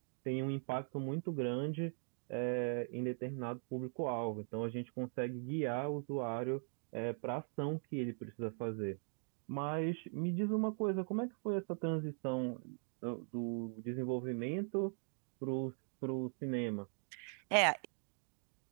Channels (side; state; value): left; silent; 51 dB below the other